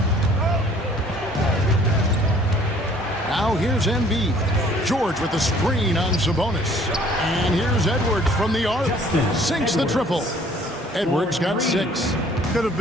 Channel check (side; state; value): both; normal; correlation 0.56